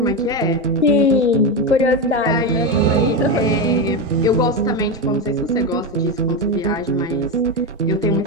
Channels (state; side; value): normal; both; correlation 0.13